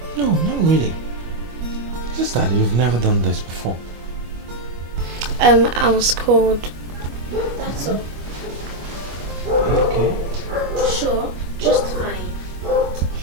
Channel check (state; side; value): late; left; 25 ms